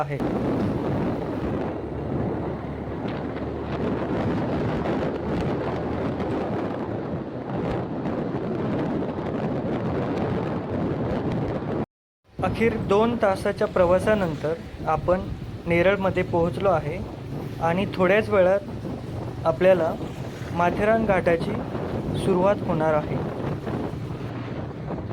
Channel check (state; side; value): identical; both; correlation 1.00